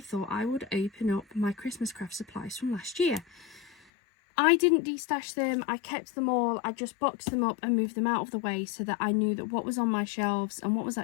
I would open up my Christmas craft supplies from last year. I didn't destash them, I kept them all. I just boxed them up and moved them out of the way so that I knew that what was on my shelves and what was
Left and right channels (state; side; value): drops out; right; at 3.8 s